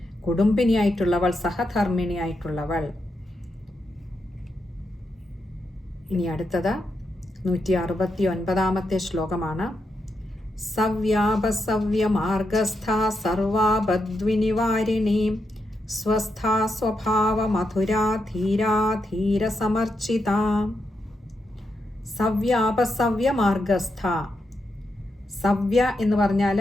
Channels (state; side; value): normal; both; correlation 0.84